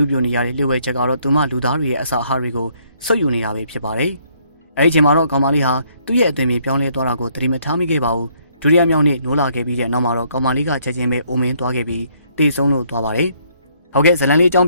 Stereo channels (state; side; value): inverted; both; correlation -0.67